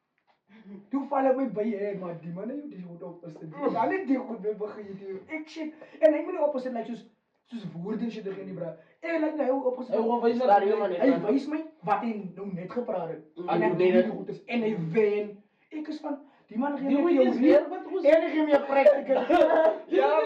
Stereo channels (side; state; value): both; identical; correlation 1.00